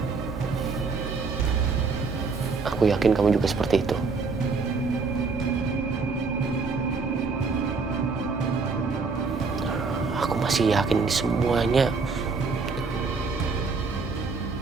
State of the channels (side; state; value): left; quieter; 4.5 dB